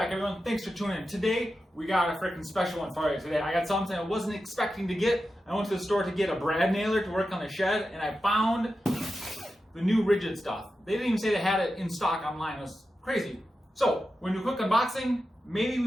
everyone. Thanks for tuning in. Today, we got a freaking special one for you. Today, I got something I wasn't expecting to get. I went to the store to get a brad nailer to work on the shed, and I found the new Ridgid stuff. They didn't even say they had it in stock online. It was crazy. So, when we do a quick unboxing, maybe we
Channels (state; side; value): normal; both; correlation 0.91